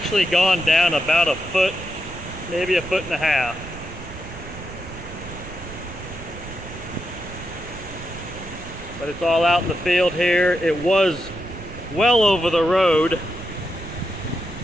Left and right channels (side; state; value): right; noise; rumble, 13 dB below the sound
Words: gone down about a foot, maybe a foot and a half. But it's all out in the field here. It was well over the road.